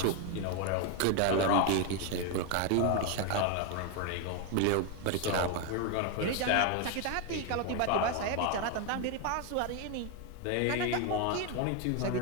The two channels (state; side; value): different; both; correlation 0.01